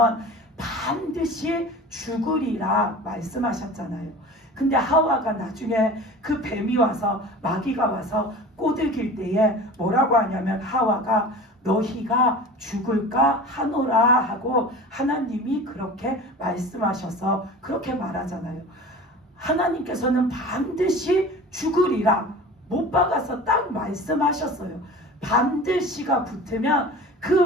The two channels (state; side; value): normal; both; correlation 0.37